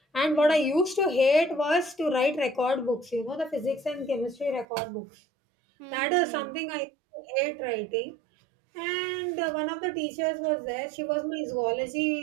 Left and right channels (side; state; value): left; drops out; at 4.7 s